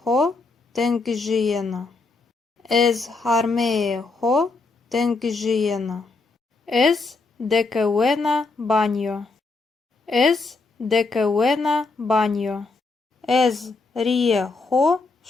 хо тенгжієна. Ез хармеє хо тенгжієна. Ез декеуена баньо. Ез декеуена баньо. Ез ріє хо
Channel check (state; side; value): quieter; right; 3.8 dB